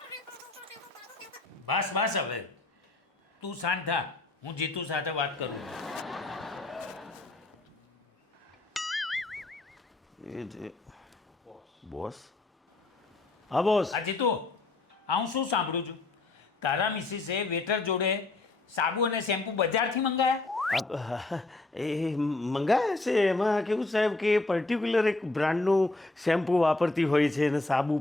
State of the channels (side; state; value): right; quieter; 3.1 dB